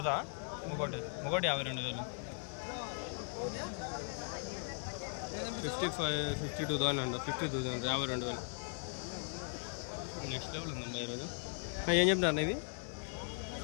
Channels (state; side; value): silent; right; 52 dB below the other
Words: ఒకటి 52,000. 52,000 అంట. 50,000. 52,000. నెక్స్ట్ లెవెల్ ఉందమ్మా ఈరోజు. ఏం చెప్పినారు ఇవి?